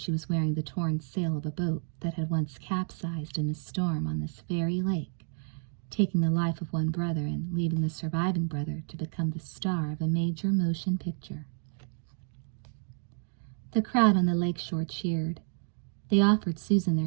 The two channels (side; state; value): left; silent; 57 dB below the other